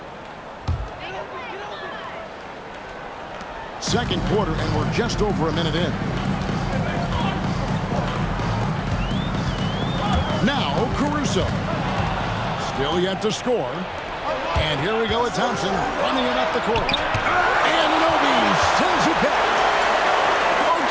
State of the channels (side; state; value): both; identical; correlation 1.00